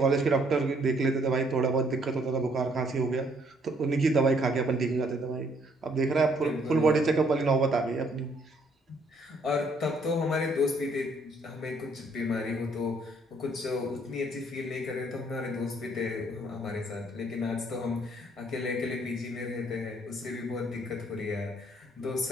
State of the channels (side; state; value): both; normal; correlation 0.66